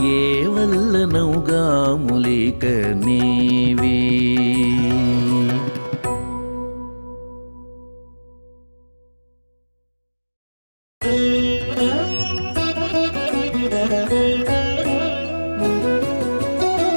ఏ వల్లనౌగా ములిక నీవి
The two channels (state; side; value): inverted; both; correlation -1.00